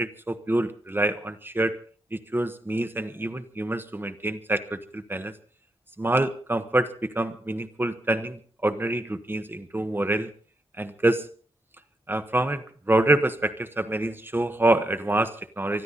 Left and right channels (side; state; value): both; normal; correlation 0.82